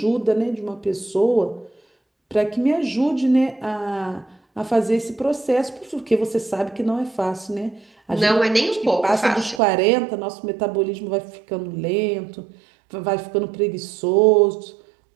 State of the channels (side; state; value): left; drops out; at 9.6 s